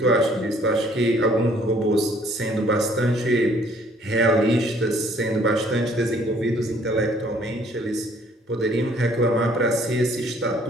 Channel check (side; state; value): both; normal; correlation 0.60